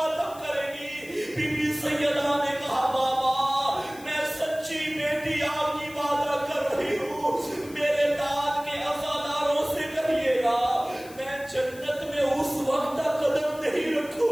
کرے گی. بی بی سیدہ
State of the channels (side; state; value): left; noise; hiss, 20 dB below the sound